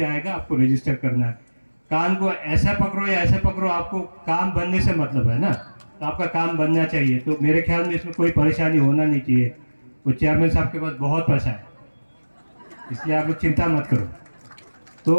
आएगा आपको रजिस्टर करना है। कान को ऐसा पकड़ो या ऐसा पकड़ो, आपको काम बनने से मतलब है ना, तो आपका काम बनना चाहिए। तो मेरे ख्याल में इसमें कोई परेशानी होना नहीं चाहिए। वो चेयरमैन साहब के पास बहुत पैसा है, इसलिए आप लोग चिंता मत करो।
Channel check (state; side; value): inverted; both; correlation -1.00